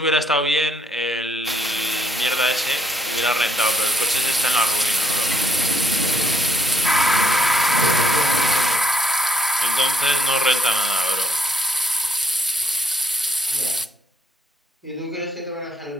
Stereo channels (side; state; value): both; normal; correlation 0.72